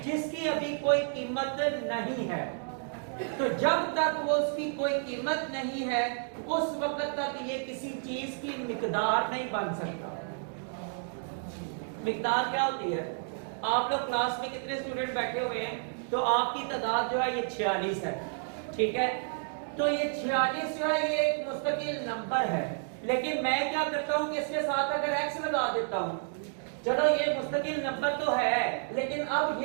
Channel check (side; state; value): left; silent; 57 dB below the other